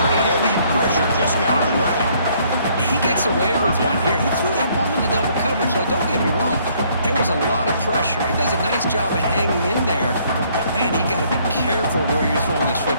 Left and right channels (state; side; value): inverted; both; correlation -0.64